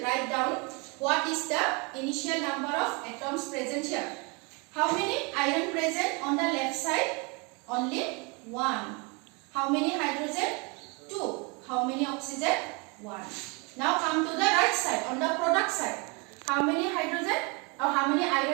write down what is the initial number of atoms present here. How many iron present on the left side? Only 1. How many hydrogen? 2. How many oxygen? 1. Now come to the right side, on the product side. How many hydrogen? Or how many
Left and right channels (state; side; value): quieter; left; 30.5 dB